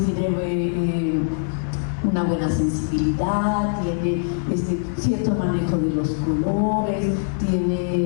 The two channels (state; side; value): silent; right; digital silence